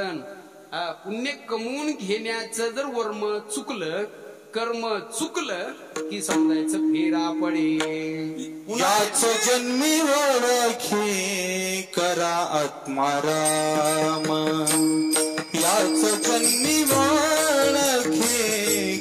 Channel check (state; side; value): identical; both; correlation 1.00